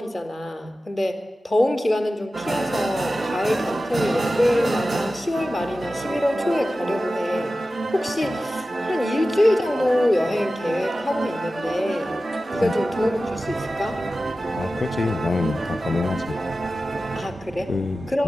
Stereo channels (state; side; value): normal; both; correlation 0.94